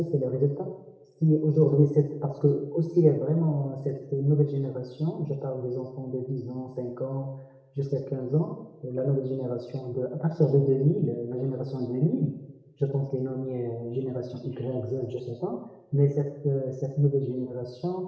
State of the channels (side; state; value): both; identical; correlation 1.00